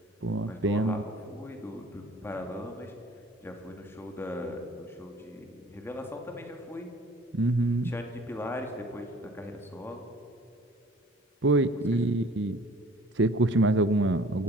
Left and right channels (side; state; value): both; normal; correlation 0.50